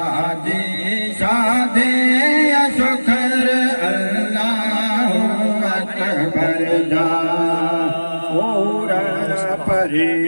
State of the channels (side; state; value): both; inverted; correlation -1.00